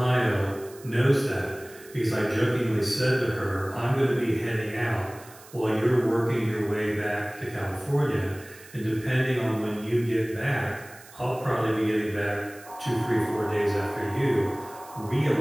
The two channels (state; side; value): noise; right; hiss, 21 dB below the sound